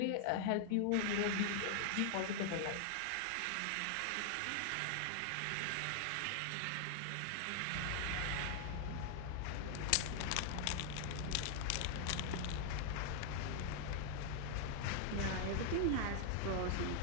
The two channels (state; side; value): different; both; correlation 0.00